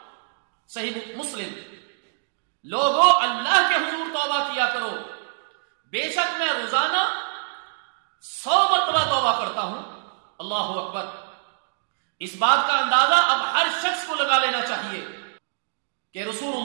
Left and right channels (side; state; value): left; silent; digital silence